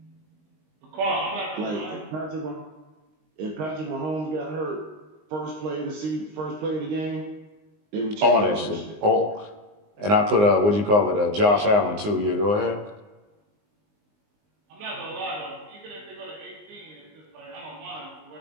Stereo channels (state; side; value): late; left; 19 ms